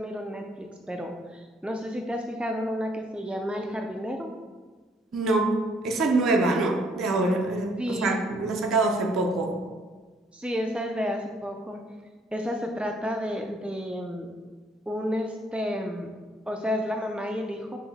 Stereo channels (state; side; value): normal; both; correlation 0.65